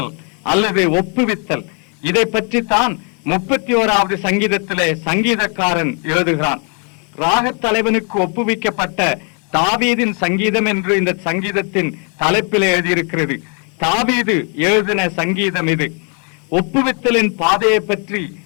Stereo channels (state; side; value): quieter; right; 38.0 dB